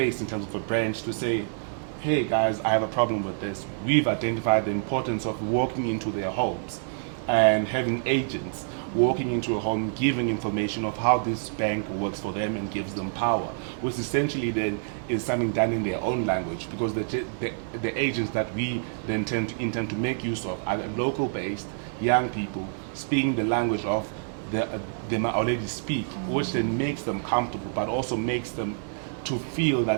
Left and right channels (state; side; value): silent; left; digital silence